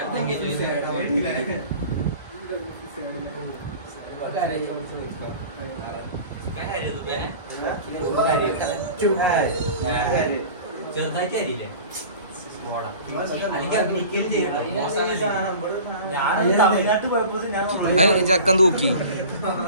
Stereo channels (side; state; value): both; inverted; correlation -0.40